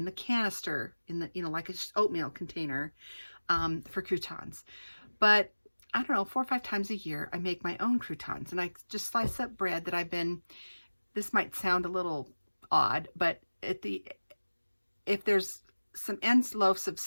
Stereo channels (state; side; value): inverted; both; correlation -1.00